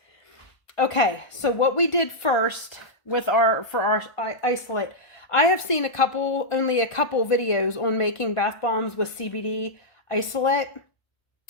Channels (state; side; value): late; right; 1.5 ms